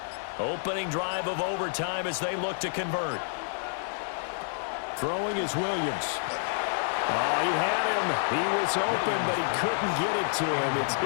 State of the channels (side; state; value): right; silent; digital silence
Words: Opening drive of overtime as they look to convert. Throwing is Williams. Oh, he had him. He was open, but he couldn't get it to him. It's